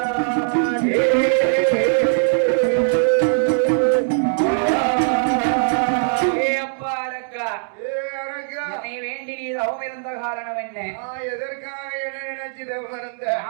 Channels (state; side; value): silent; left; digital silence